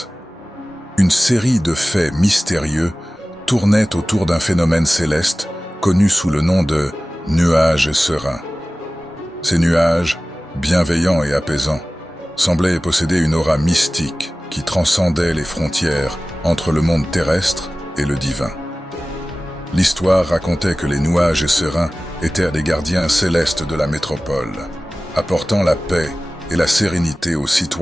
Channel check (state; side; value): normal; both; correlation 0.97